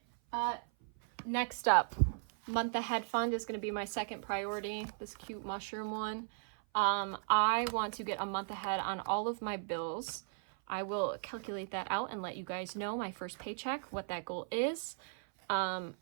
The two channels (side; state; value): left; silent; 53 dB below the other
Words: Next up, month ahead fund is gonna be my second priority, this cute mushroom one. I want to get a month ahead on all of my bills. I will calculate that out and let you guys know my first paycheck, what that goal is.